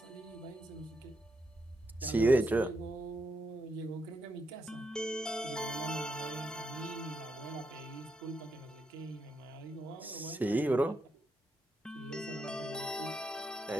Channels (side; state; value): both; normal; correlation 0.81